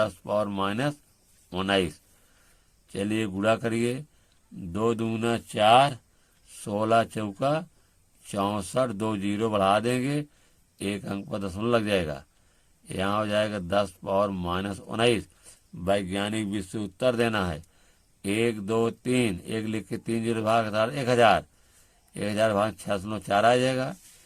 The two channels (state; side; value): identical; both; correlation 1.00